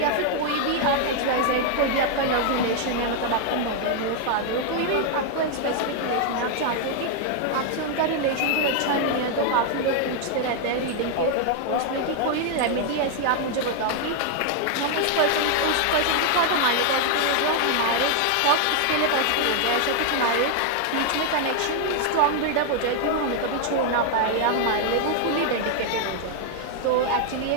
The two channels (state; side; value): different; both; correlation 0.00